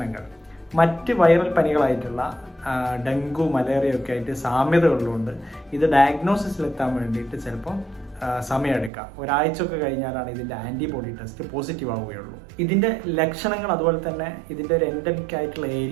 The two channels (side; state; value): left; drops out; at 8.9 s